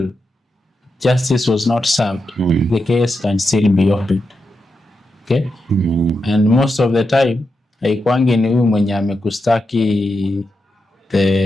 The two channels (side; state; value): both; normal; correlation 0.87